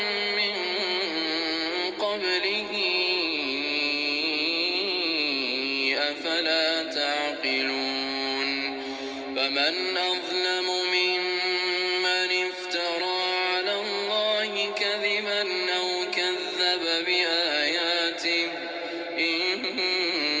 من قبله أفلا تعقلون فمن أظلم ممن افترى على الله كذبا أو كذب بآياته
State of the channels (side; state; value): both; identical; correlation 1.00